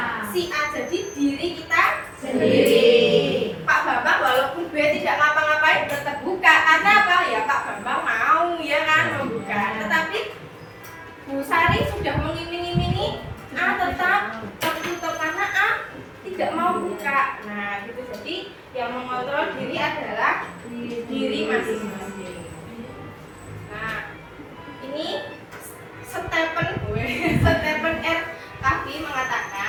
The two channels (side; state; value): both; identical; correlation 1.00